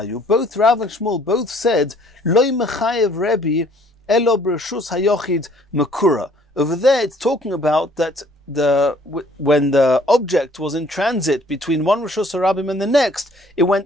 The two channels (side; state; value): both; normal; correlation 0.59